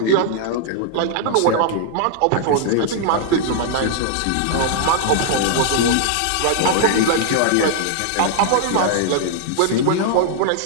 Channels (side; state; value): both; different; correlation -0.01